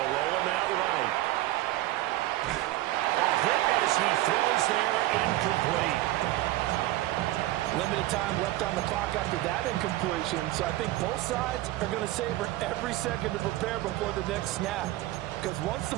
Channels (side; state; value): left; quieter; 16.8 dB